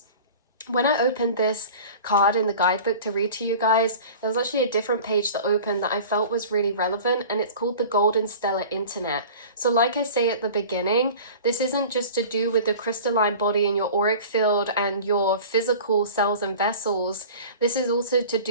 When I opened this card in the guidebook to read to you guys, there was actually a different page that opened that I felt was really relevant, and it's called the Golden Stellar Internet. So like I say at the beginning, this isn't just to do with the crystalline body and your auric field and your physical cells and vessels. This is also to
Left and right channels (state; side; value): inverted; both; correlation -0.40